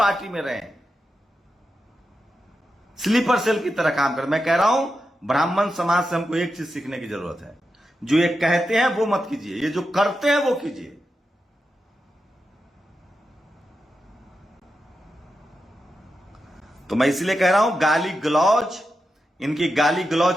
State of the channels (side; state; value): both; normal; correlation 0.89